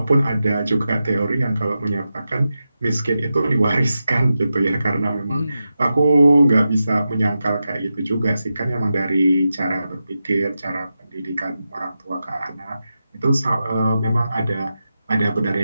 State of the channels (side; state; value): both; inverted; correlation -0.91